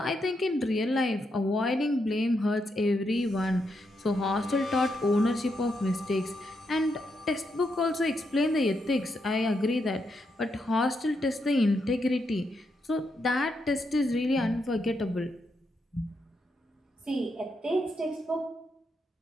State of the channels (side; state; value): both; normal; correlation 0.81